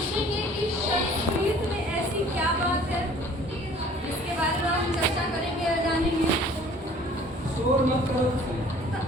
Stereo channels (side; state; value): both; normal; correlation 0.52